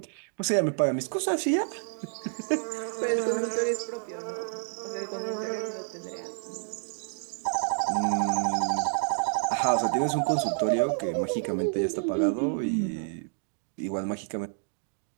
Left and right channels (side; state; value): left; silent; digital silence